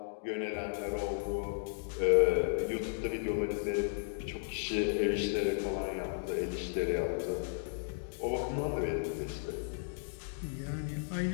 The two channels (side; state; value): right; silent; digital silence